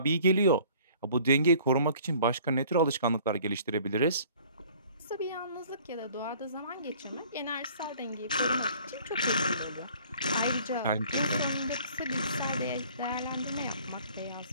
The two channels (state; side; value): inverted; both; correlation -0.53